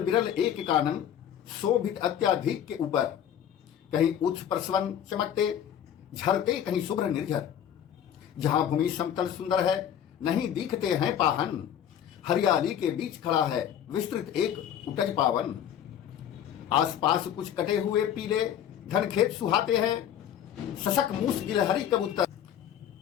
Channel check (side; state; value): right; quieter; 9.8 dB